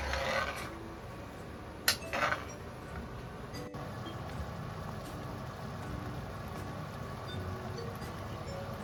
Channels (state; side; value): identical; both; correlation 1.00